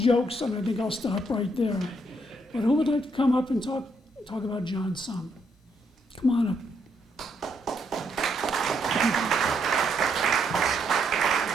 and I think I'll stop right there. But who would like to come up and talk about John some? Come on up.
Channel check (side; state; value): both; normal; correlation 0.74